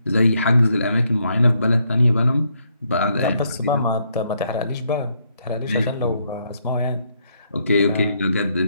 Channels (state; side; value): inverted; both; correlation -0.75